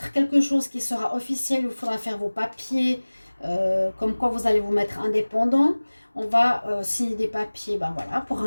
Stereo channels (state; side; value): inverted; both; correlation -1.00